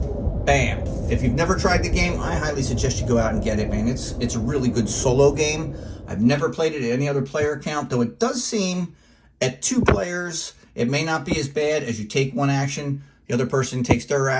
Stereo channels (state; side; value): identical; both; correlation 1.00